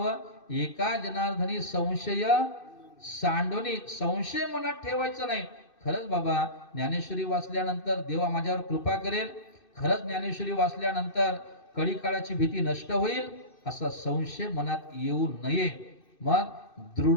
एका जनार्दनी संशय सांडोनी. संशय मनात ठेवायचा नाही. खरंच बाबा ज्ञानेश्वरी वाचल्यानंतर देवा माझ्यावर कृपा करेल, खरंच ज्ञानेश्वरी वाचल्यानंतर कडी काळाची भीती नष्ट होईल, असा संशय मनात येऊ नये. मग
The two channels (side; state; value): right; late; 2.6 ms